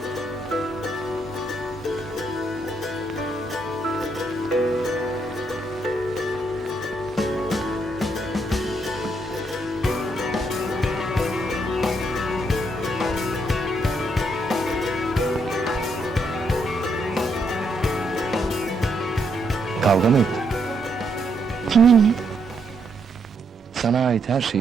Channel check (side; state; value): both; normal; correlation 0.76